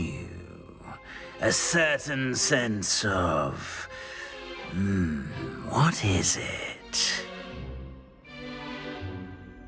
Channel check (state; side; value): identical; both; correlation 1.00